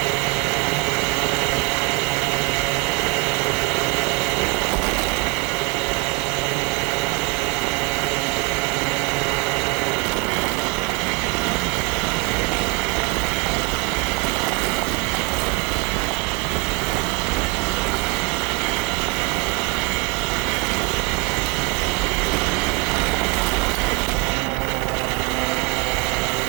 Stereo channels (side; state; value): left; quieter; 26.6 dB